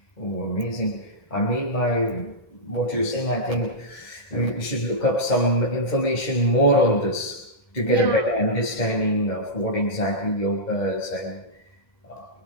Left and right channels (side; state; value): right; late; 1.7 ms